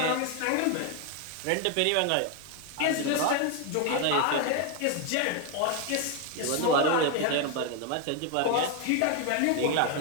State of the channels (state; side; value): different; both; correlation 0.01